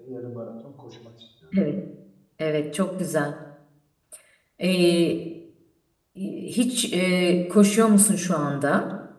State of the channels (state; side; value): identical; both; correlation 1.00